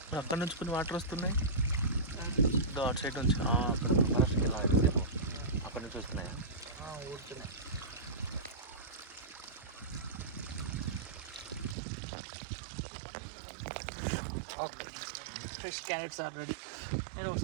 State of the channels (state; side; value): drops out; left; at 11.8 s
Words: అక్కడ నుంచి కొన్ని వాటర్ వస్తున్నాయి, అటు సైడ్ నుంచి అక్కడ ఫారెస్ట్కి వెళ్ళాలి, అక్కడ నుంచి వస్తున్నాయా? ఊరుతున్నాయి. Okay, fresh carrots are ready. నేను